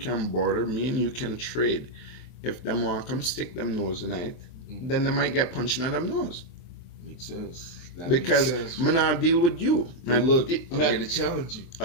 barter. Me and you can trade. If them want to come stick them nose tonight, then they might get punched in them nose. Makes sense. That Because makes sense. I'm not deal with you. But look, I'm here to challenge you.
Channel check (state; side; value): late; right; 23 ms